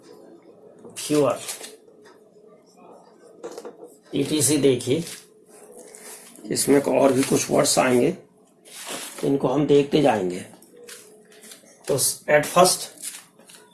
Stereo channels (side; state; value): both; identical; correlation 1.00